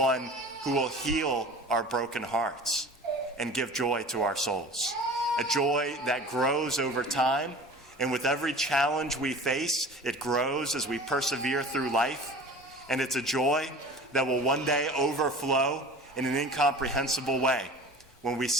who will heal our broken hearts and give joy to our souls. A joy that grows over time, and with every challenge we face, it grows as we persevere through life. And it's a joy that will one day overflow in an incomprehensible way when we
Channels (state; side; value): normal; both; correlation 0.40